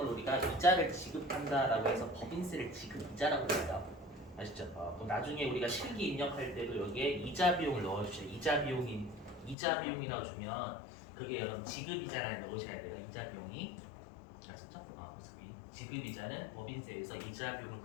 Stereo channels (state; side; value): drops out; right; at 9.6 s